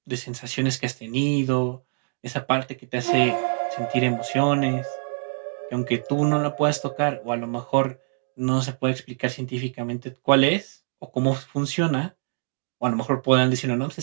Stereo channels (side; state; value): left; silent; digital silence